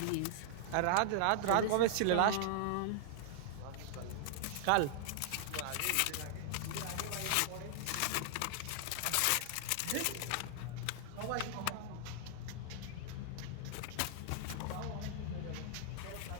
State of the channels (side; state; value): both; different; correlation -0.01